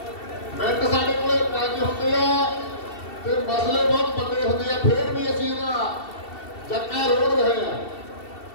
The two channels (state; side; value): late; right; 2.7 ms